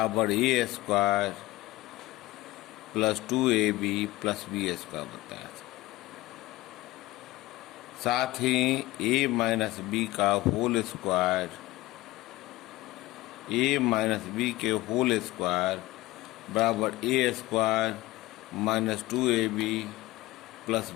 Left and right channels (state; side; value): quieter; right; 18.5 dB